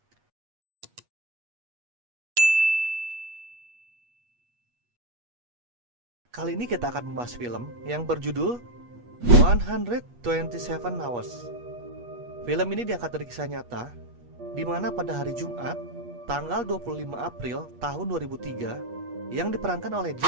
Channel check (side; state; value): left; late; 8.3 ms